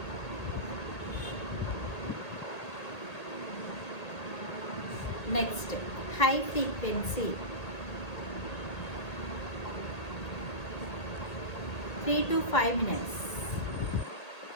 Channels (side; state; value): right; late; 1.8 ms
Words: Next high frequency 3 to 5 minutes.